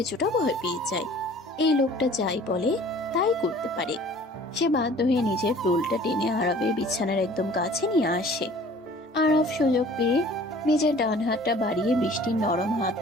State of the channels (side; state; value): both; normal; correlation 0.50